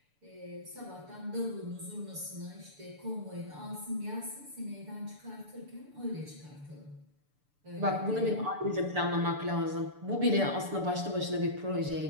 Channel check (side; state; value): left; late; 6.9 ms